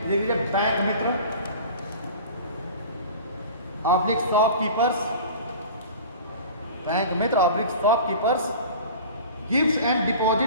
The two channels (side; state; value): both; inverted; correlation -0.39